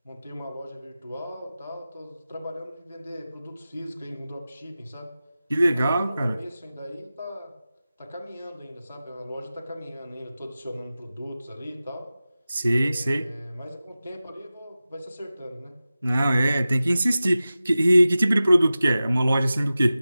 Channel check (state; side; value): inverted; both; correlation -0.95